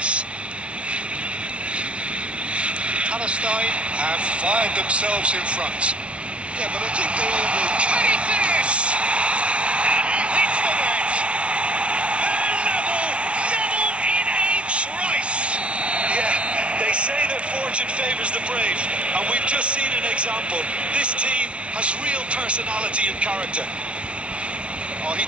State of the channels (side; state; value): left; late; 0.060 ms